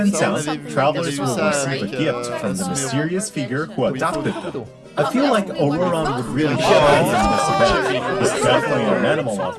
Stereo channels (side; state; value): both; identical; correlation 1.00